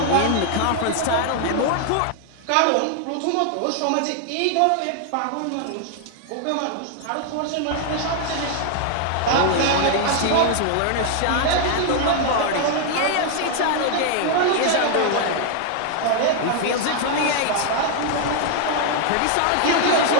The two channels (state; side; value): different; both; correlation 0.00